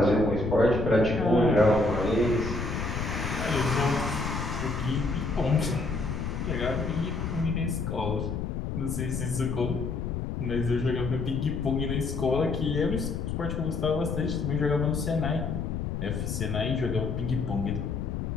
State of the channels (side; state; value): left; noise; rumble, 3 dB below the sound